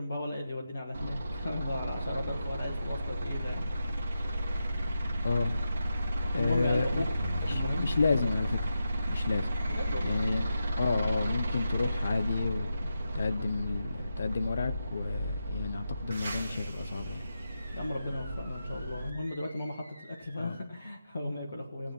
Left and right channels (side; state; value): both; inverted; correlation -0.88